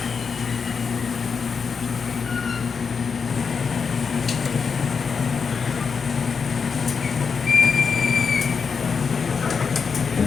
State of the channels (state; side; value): quieter; right; 5.7 dB